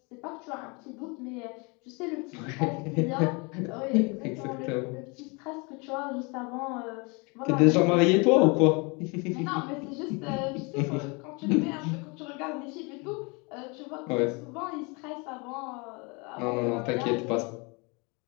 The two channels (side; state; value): right; quieter; 29.9 dB